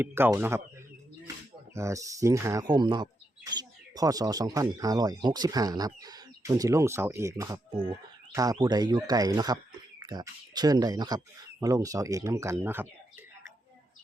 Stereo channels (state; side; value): normal; both; correlation 0.83